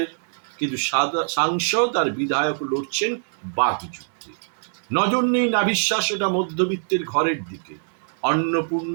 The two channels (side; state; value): left; silent; digital silence